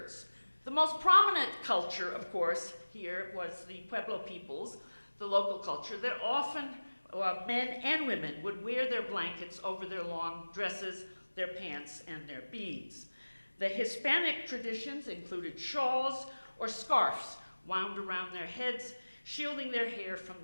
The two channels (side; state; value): both; inverted; correlation -1.00